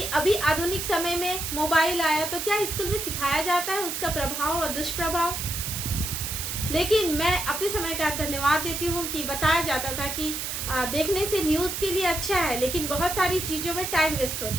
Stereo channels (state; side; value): noise; right; hiss, 4 dB below the sound